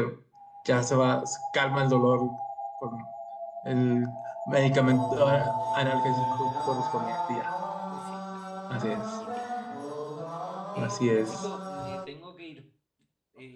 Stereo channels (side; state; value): both; identical; correlation 1.00